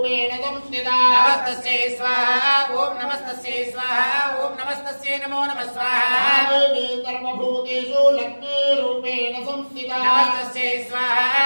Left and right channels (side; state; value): both; inverted; correlation -1.00